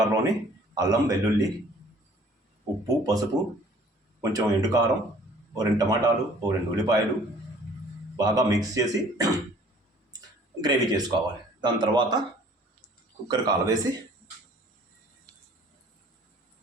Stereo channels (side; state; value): both; normal; correlation 0.54